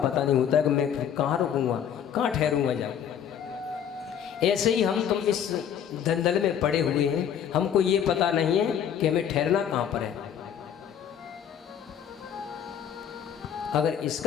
नहीं होता है कि मैं कहाँ रुकूंगा, कहाँ ठहरूंगा जाऊँ। ऐसे ही हम तुम इस दलदल में पड़े हुए हैं, हमको ये पता नहीं है कि हमें ठहरना कहाँ पर है। अगर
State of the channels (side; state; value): right; quieter; 8.8 dB